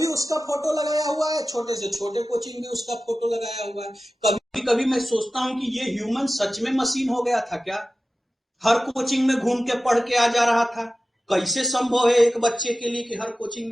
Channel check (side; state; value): both; normal; correlation 0.95